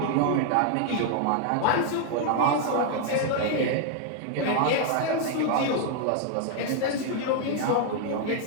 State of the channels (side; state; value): both; different; correlation 0.00